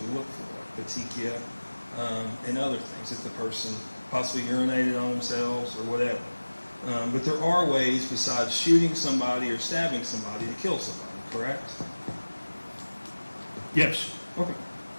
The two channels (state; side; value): inverted; both; correlation -1.00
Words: look for, like petechia and other things, if the person possibly urinated on themselves or whatever. But there are ways besides shooting somebody or stabbing somebody to kill somebody, correct? Yes. Okay.